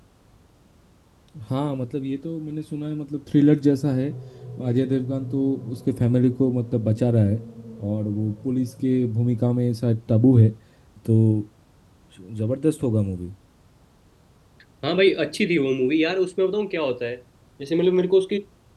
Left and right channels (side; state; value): both; identical; correlation 1.00